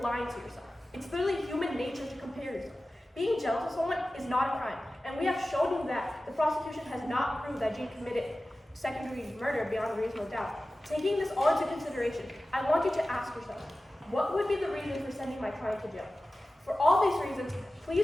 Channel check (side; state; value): both; normal; correlation 0.95